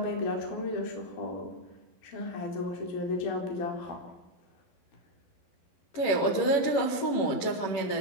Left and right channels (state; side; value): late; right; 11 ms